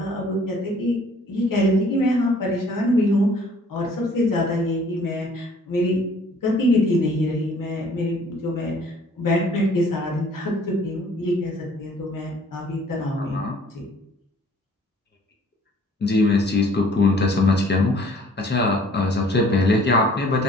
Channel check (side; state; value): both; normal; correlation 0.56